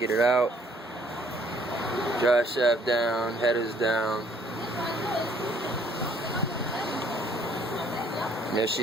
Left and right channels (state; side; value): normal; both; correlation 0.63